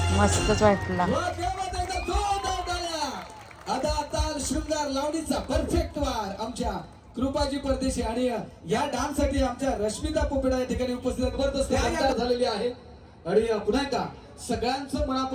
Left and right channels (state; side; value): identical; both; correlation 1.00